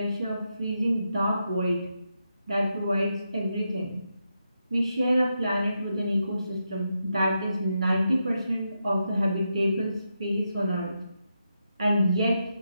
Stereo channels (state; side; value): inverted; both; correlation -0.85